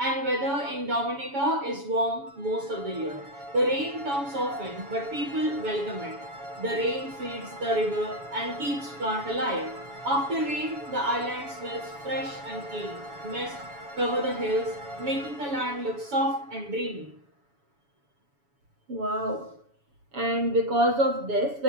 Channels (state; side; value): late; left; 7.1 ms